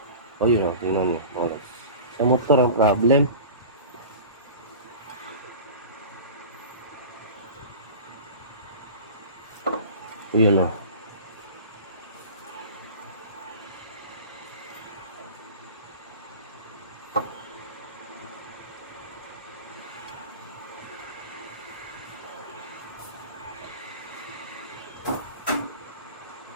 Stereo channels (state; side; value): inverted; both; correlation -0.37